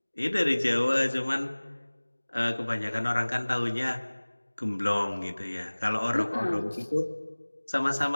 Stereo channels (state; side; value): inverted; both; correlation -1.00